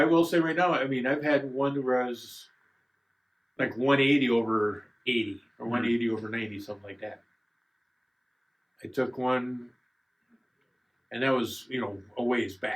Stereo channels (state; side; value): identical; both; correlation 1.00